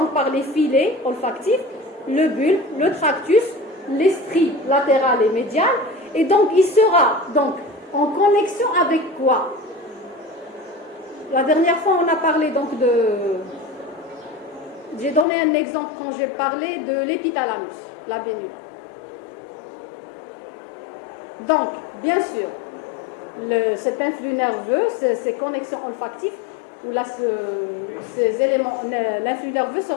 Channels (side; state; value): right; drops out; at 15.2 s